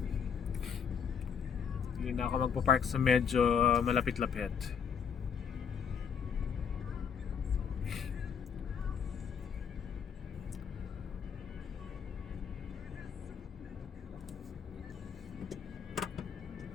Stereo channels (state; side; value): quieter; right; 7.0 dB